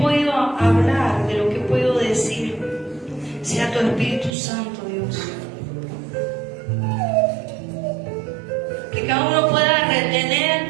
hablar, de lo que puedo decir, sea tu Espíritu Santo, Dios. Que cada uno pueda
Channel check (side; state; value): left; drops out; at 4.4 s